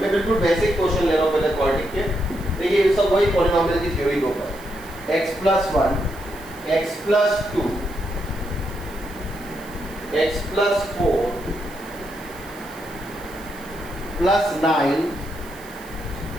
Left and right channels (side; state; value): right; noise; hiss, 21 dB below the sound